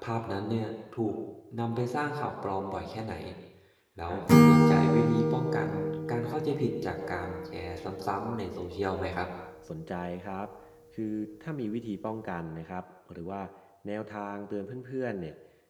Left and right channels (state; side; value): identical; both; correlation 1.00